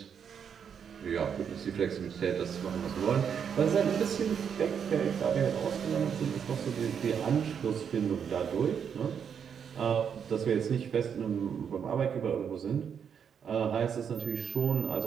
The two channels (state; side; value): quieter; left; 7.5 dB